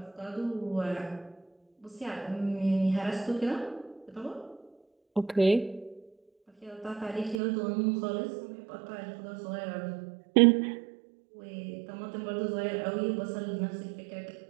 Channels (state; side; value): drops out; left; at 7.4 s